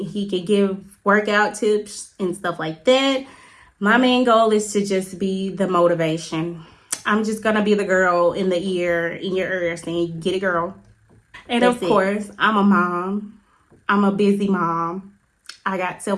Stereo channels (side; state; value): both; identical; correlation 1.00